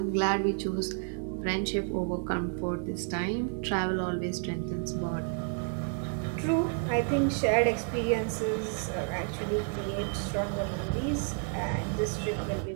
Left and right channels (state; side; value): quieter; left; 38.6 dB